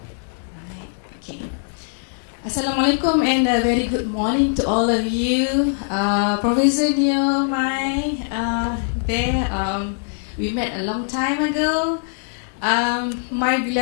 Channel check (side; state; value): right; silent; digital silence